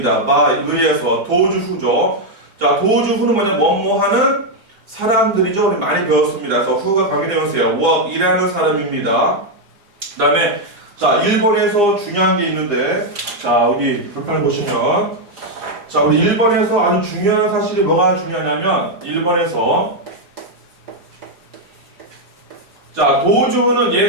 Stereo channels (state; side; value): late; left; 4.9 ms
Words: by 의해서 도주 후죠. 자, 도주 후는 뭐냐? 뭐뭐 하는 사람들이죠. 우리 많이 배웠습니다. 그래서 후가 강의되면서요. work 일하는 사람입니다. 그 다음에 자, 1번에서 중요한 게 있는데 자, 여기 불판을 보시면 자, 우리 1번에서 아주 중요한 사실이 뭐가 중요하냐면 1번에서 자, 도주는